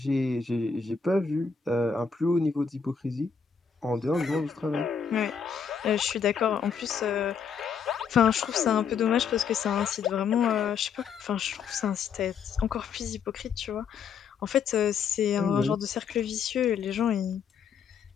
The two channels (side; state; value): right; quieter; 6.4 dB